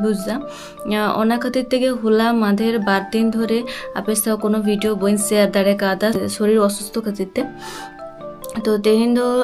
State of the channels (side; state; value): both; identical; correlation 1.00